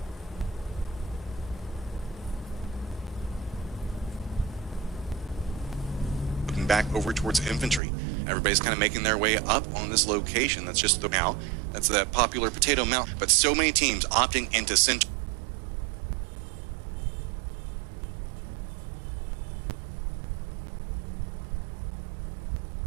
Back over towards infantry. Everybody's kind of making their way up on this location. That's just the now. That's that popular potato mount. But so many teams opting into center.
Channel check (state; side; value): drops out; left; at 7.8 s